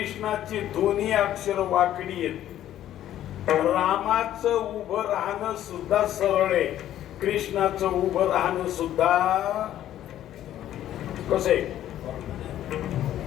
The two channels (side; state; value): right; quieter; 12.1 dB